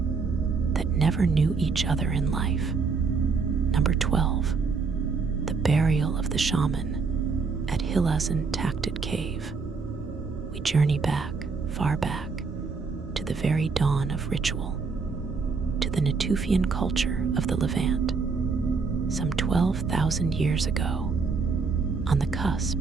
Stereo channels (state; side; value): quieter; left; 4.8 dB